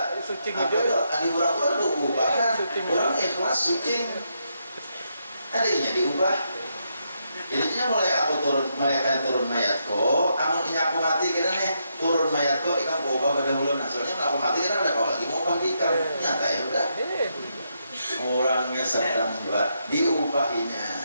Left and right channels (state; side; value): inverted; both; correlation -0.80